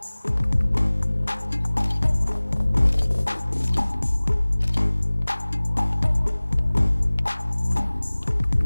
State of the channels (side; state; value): both; inverted; correlation -1.00